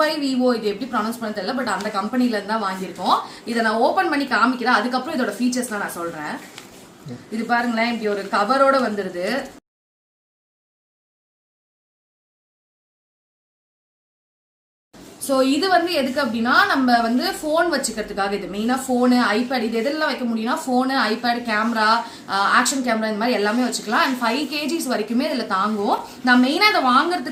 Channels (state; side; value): identical; both; correlation 1.00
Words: இது எப்படி ப்ரொனவுன்ஸ் பண்ண தெரியல, பட் அந்த கம்பெனில இருந்து தான் வாங்கியிருக்கோம். இதை நான் ஓபன் பண்ணி காமிக்கிறேன். அதுக்கப்புறம் இதோட ஃபீச்சர்ஸ்லாம் நான் சொல்றேன். இது பாருங்களேன், இப்படி ஒரு கவரோட வந்துருது. ஸோ இது வந்து எதுக்கு அப்படின்னா நம்ம வந்து ஃபோன் வச்சுக்கிறதுக்காக. இது மெயினாக ஃபோனு, ஐபேட், இது எதெல்லாம் வைக்க முடியும்னா phone, iPad, camera, action camera, இந்த மாதிரி எல்லாமே வச்சுக்கலாம். அண்ட் 5 kgs வரைக்குமே இதில் தாங்கும். நான் மெயினாக இதை